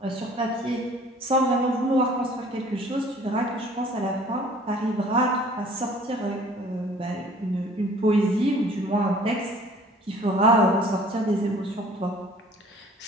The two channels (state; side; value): normal; both; correlation 0.52